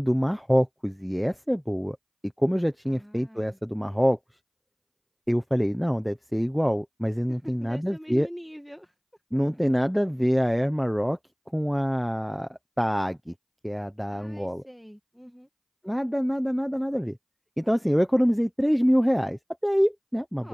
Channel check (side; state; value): both; identical; correlation 1.00